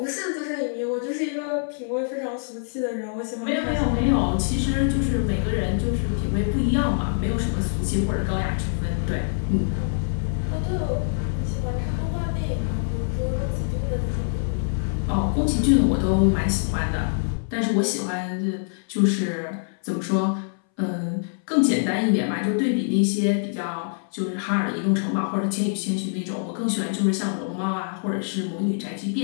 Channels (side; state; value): right; silent; 61 dB below the other